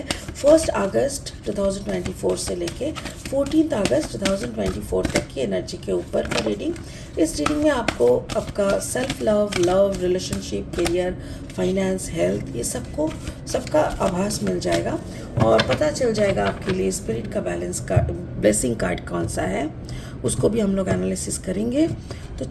1 अगस्त 2024 से लेके 14 अगस्त 2024 तक की एनर्जी के ऊपर का रीडिंग. इस रीडिंग में आपको आपका self love, relationship, career, finance, health, ये सबका आभास मिल जाएगा और पता चल जाएगा आपके लिए स्पिरिट का बैलेंस का ब्लेसिंग कार्ड कौन सा है. उसको भी हम लोग एनालिसिस करेंगे. तो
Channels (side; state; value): both; identical; correlation 1.00